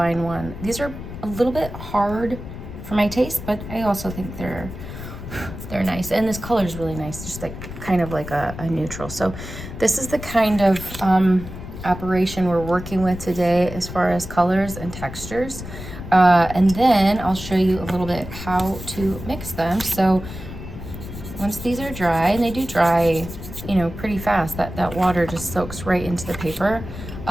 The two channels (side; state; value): left; noise; rumble, 10 dB below the sound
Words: one. These are a little bit hard for my taste, but I also think they're nice. And this color is really nice, just like kind of like a neutral. So this is the kind of operation we're working with today as far as colors and textures. And then I'll show you a little bit how to mix them. So once these are dry, and they do dry, you know, pretty fast, that water just soaks right into the paper,